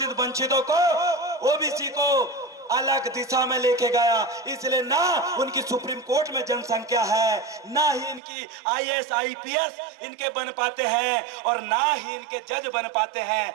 वंचितों को, ओबीसी को अलग दिशा में लेके गया। इसलिए ना उनकी सुप्रीम कोर्ट में जनसंख्या है, ना ही इनकी आईएएस आईपीएस इनके बन पाते हैं, और ना ही इनके जज बन पाते हैं।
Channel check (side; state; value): left; drops out; at 8.2 s